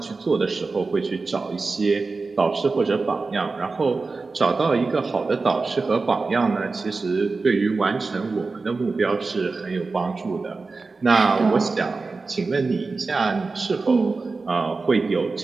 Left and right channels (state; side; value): quieter; left; 4.0 dB